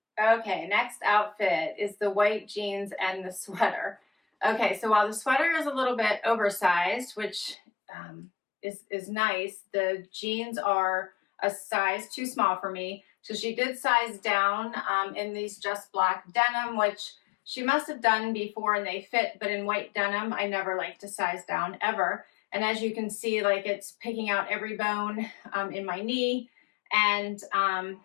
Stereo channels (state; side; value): drops out; right; at 7.6 s